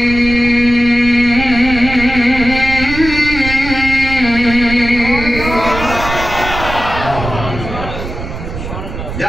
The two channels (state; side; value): noise; right; rumble, 8 dB below the sound